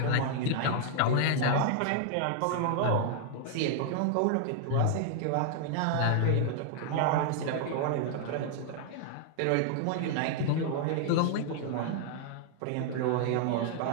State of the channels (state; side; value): different; both; correlation 0.00